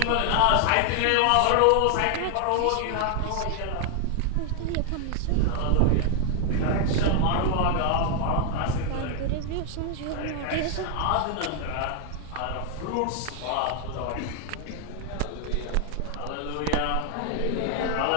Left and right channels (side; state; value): both; different; correlation 0.00